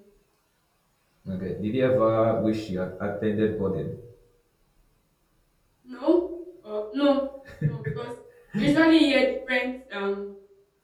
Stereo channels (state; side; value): identical; both; correlation 1.00